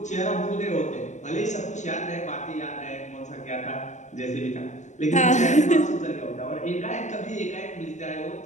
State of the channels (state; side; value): late; right; 0.34 ms